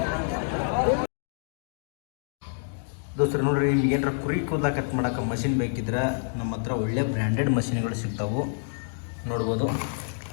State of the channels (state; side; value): silent; right; digital silence